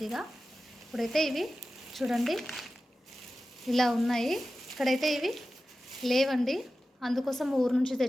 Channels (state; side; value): normal; both; correlation 0.94